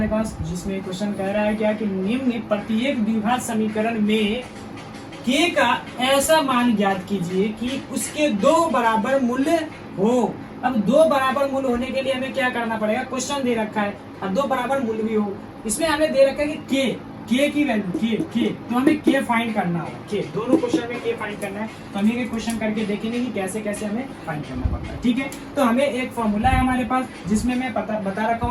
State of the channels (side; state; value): both; identical; correlation 1.00